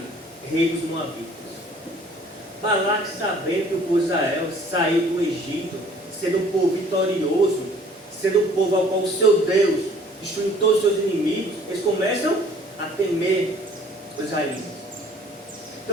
rei dos Moabitas. Balaque, sabendo que o povo de Israel saiu do Egito, sendo um povo vitorioso, sendo um povo ao qual o seu Deus destruiu todos os seus inimigos, eles começam a temer os israelitas.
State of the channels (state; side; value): normal; both; correlation 0.55